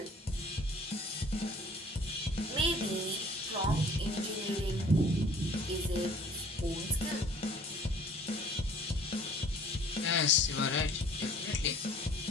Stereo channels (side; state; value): both; normal; correlation 0.52